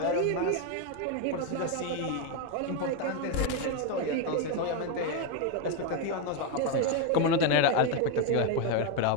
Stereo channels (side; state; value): both; different; correlation 0.02